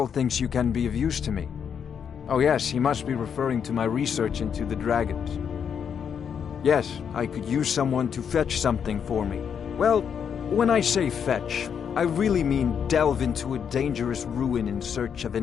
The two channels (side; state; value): right; quieter; 7.5 dB